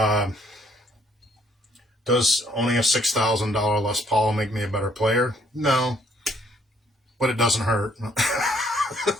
does owning a $6,000 Les Paul make me a better player? No, but it doesn't hurt.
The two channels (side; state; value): both; normal; correlation 0.66